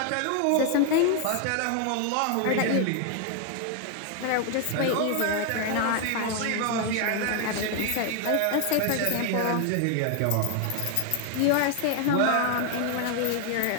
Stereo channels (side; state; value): both; different; correlation 0.00